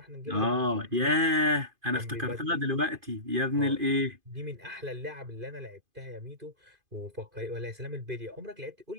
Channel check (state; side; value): late; left; 2.5 ms